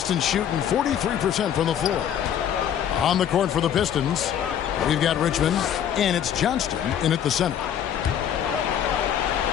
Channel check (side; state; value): right; quieter; 9.6 dB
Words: shooting 43% from the floor. On the court for the Pistons, we've got Richmond, and it's Johnston in at the center.